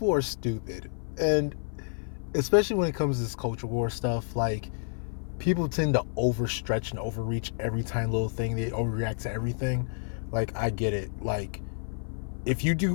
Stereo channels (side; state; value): right; silent; 55 dB below the other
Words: are stupid, and especially when it comes to this culture war stuff, like people tend to overstretch and overreach every tiny little thing. They overreact to everything. Like, I get it. Like, if you